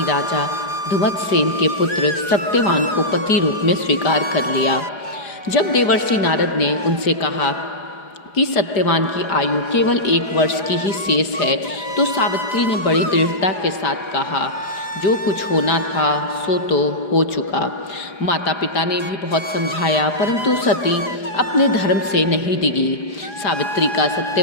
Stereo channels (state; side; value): late; right; 4.9 ms